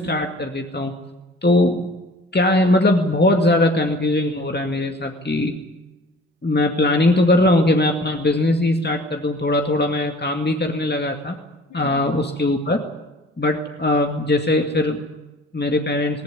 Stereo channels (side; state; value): both; normal; correlation 0.48